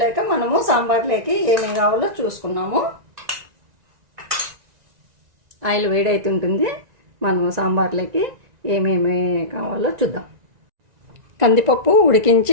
మనము సాంబార్లోకి ఏమేమి కావాలో చూసుకున్నాము. ఆయిల్ వేడైతుంటుంది, మనము సాంబార్లోకి ఏమేమి కావాలో చూద్దాం. కందిపప్పు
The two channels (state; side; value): late; left; 1.9 ms